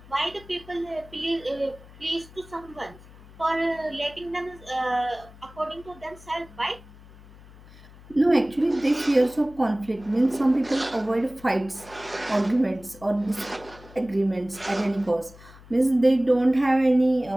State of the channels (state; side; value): noise; left; hum, 21 dB below the sound